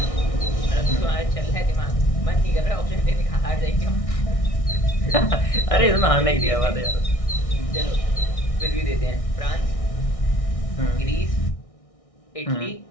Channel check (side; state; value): right; late; 1.6 ms